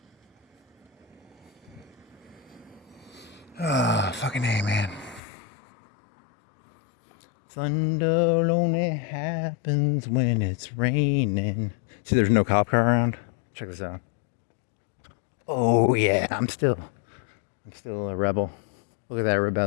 Ah, fucking A, man. Thunder only happens when it's raining. See, there's no cop car around. Check this out. Oh yeah, I'm still a rebel. Look at that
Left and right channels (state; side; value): drops out; right; at 5.2 s